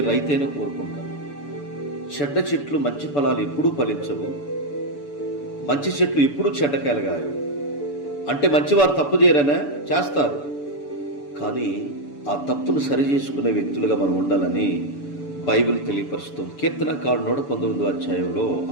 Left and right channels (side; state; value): right; late; 6.9 ms